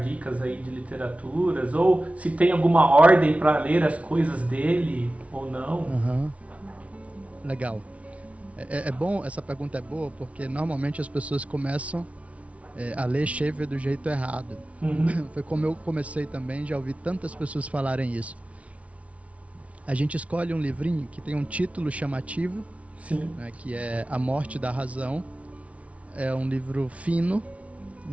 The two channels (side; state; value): left; late; 0.065 ms